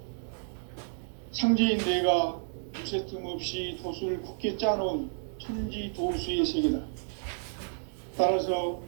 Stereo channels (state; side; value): silent; left; digital silence